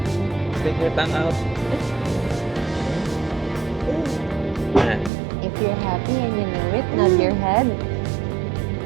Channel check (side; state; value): left; drops out; at 5.1 s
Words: Stick your tongue out. If you're happy and you know it, nod your head.